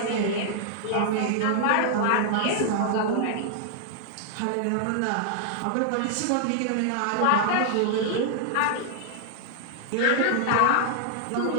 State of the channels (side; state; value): both; different; correlation -0.01